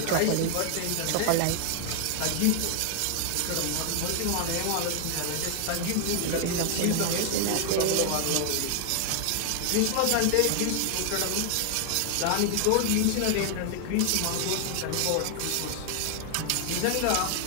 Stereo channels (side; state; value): both; different; correlation 0.00